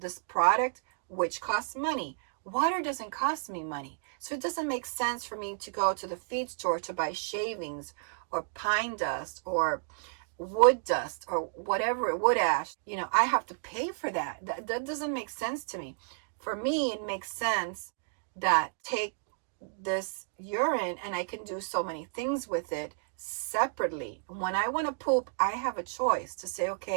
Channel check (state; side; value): silent; left; digital silence